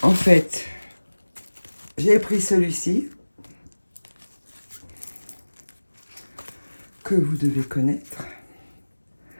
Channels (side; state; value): both; inverted; correlation -1.00